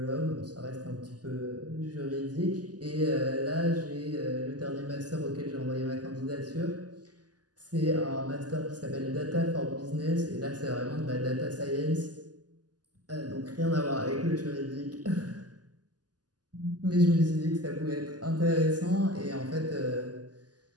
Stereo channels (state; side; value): late; left; 0.68 ms